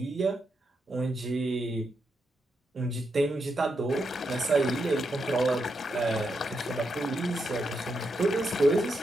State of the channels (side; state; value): both; normal; correlation 0.83